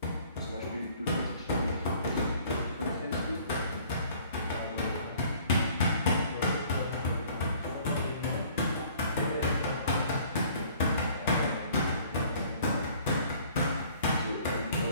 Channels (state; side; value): inverted; both; correlation -0.55